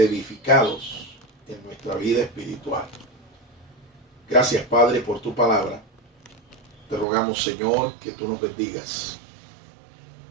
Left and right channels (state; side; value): drops out; left; at 7.1 s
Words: en nuestra vida espiritual. Gracias, Padre, por tu palabra. Te rogamos, Señor, que tú nos bendigas,